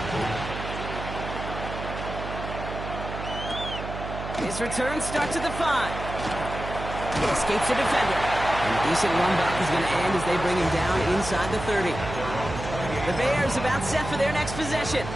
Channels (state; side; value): noise; right; hum, 8 dB below the sound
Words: His return starts at the 5. He escapes the defender. And a decent run back is going to end as they bring him down inside the 30. The Bears about set for their next possession.